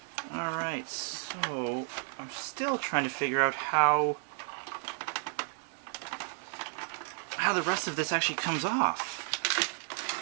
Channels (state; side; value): silent; left; 56 dB below the other